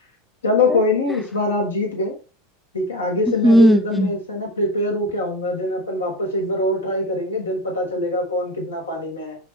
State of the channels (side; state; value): both; normal; correlation 0.33